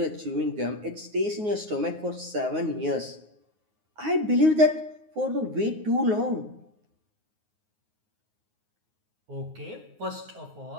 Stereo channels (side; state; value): left; late; 9.5 ms